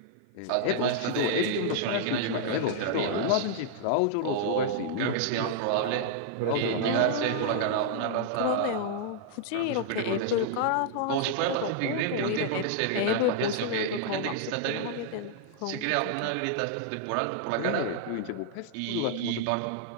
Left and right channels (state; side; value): different; both; correlation -0.01